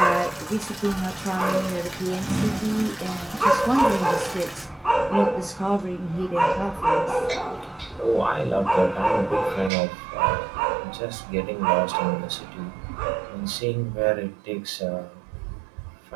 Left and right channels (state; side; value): drops out; left; at 9.7 s